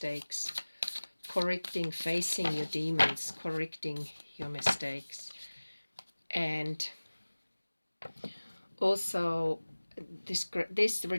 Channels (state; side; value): inverted; both; correlation -1.00